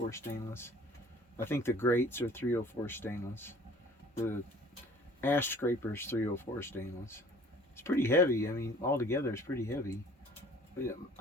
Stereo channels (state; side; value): normal; both; correlation 0.51